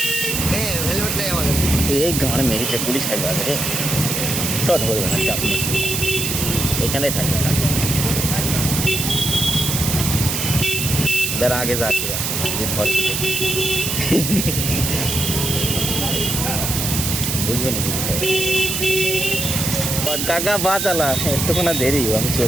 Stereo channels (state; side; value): noise; right; hiss, 1 dB below the sound